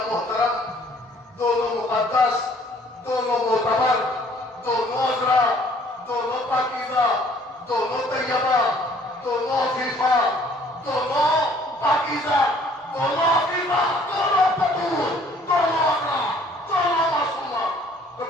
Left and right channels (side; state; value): both; normal; correlation 0.58